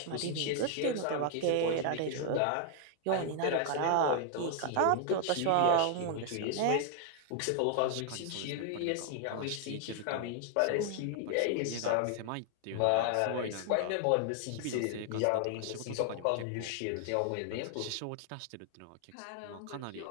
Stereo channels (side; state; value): both; different; correlation 0.00